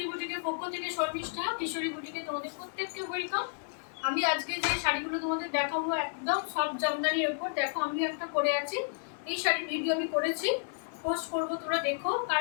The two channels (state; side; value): silent; right; digital silence